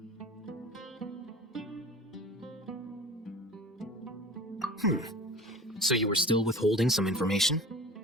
So you were still withholding some information?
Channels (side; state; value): both; normal; correlation 0.39